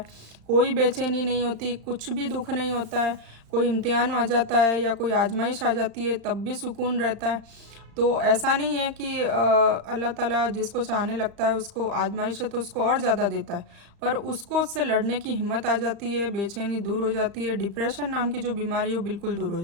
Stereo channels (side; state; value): left; late; 35 ms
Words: कोई बेचैनी नहीं होती, कुछ भी दुख नहीं होता है। कोई इम्तिहान आ जाता है या कोई आजमाइश आ जाती है तब भी सुकून रहता है। तो ऐसा नहीं है कि अल्लाह ताला जिसको चाहने लगता है उसको आजमाइश है तो उसको और ज़्यादा देता है, पर उसको उससे लड़ने की हिम्मत आ जाती है, बेचैनी दूर हो जाती है, डिप्रेशन नाम की जो बीमारी हो बिल्कुल दूर हो